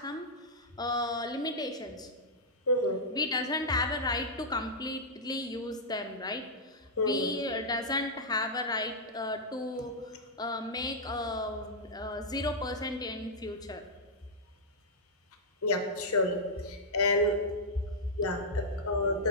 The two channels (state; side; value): normal; both; correlation -0.07